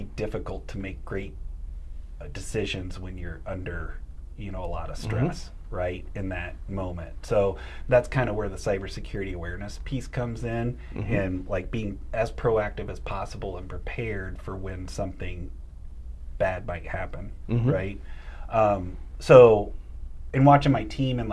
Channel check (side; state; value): both; identical; correlation 1.00